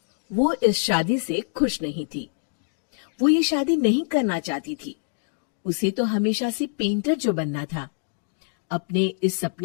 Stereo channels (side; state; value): right; silent; digital silence